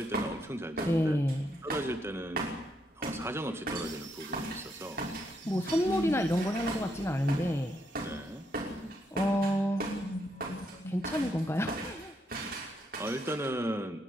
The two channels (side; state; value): both; normal; correlation 0.77